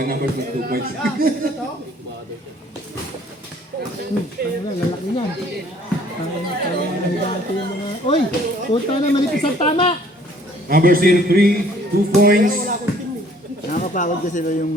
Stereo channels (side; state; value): both; normal; correlation 0.57